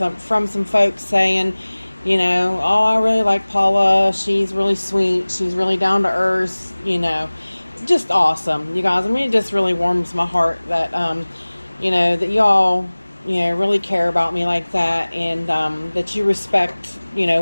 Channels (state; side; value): inverted; both; correlation -1.00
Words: some folks saying, you know, oh, I really like Paula. She's really sweet. She's really down to earth. You know, just awesome, you guys. I mean, it just really warms my heart that, you know, that y'all, you know, really care about me like that, and that you respect, you know,